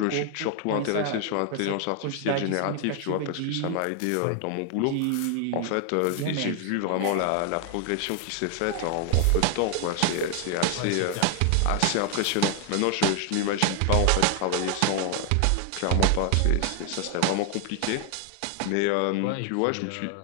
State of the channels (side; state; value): both; different; correlation 0.00